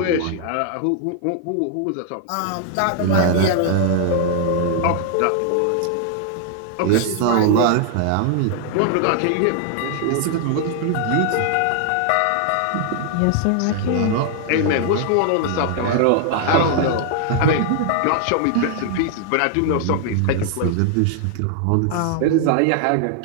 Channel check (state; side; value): different; both; correlation 0.00